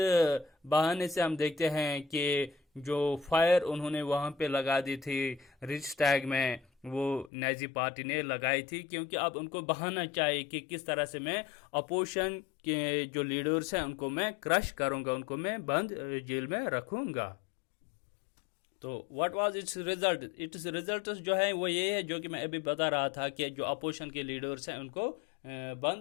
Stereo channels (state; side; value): drops out; right; at 7.3 s